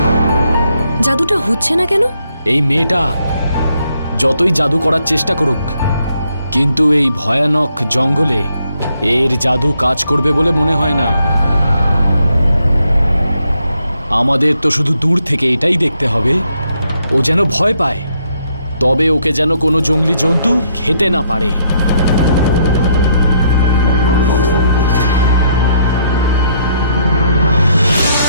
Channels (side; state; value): both; inverted; correlation -0.73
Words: জাদুটা হচ্ছে না কেন? এই মেয়েটা যতই জাদু করার চেষ্টা করুক, কিন্তু এই ভয়ানক জঙ্গলে এর জাদু কাজ করবে বলে মনে হয় না। আমাদের তো শুধু দূর থেকে এটাই দেখতে হবে ও যেন ভয় পায়, তবে ওকে যেন কোনো জঙ্গলি জন্তু খেতে না পারে।